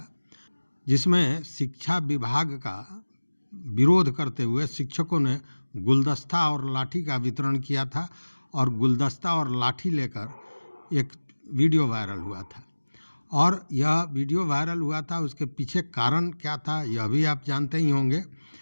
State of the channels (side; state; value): both; inverted; correlation -1.00